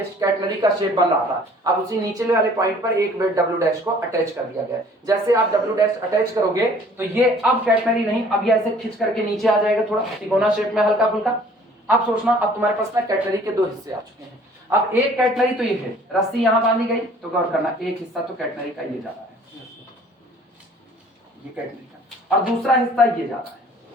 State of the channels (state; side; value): normal; both; correlation 0.54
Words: कैटनरी का शेप बन रहा था। अब उसी नीचे वाले पॉइंट पर एक वेट डब्ल्यू डैश को अटैच कर दिया गया। जैसे आप डब्ल्यू डैश अटैच करोगे तो ये अब कैटनरी नहीं, अब ये ऐसे खींच करके नीचे आ जाएगा, थोड़ा तिकोना शेप में हल्का फुल्का। अब सोचना, अब तुम्हारे पास ना कैटनरी के दो हिस्से आ चुके हैं। अब एक कैटनरी तो ये है, रस्सी यहां बांधी गई, तो गौर करना एक हिस्सा तो कैटनरी का ये जा रहा है, ये कैटनरी का, और दूसरा हिस्सा ये जा रहा है।